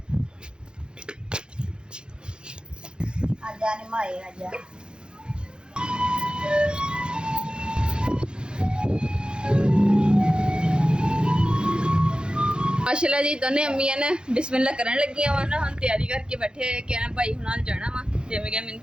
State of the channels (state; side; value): late; left; 0.049 ms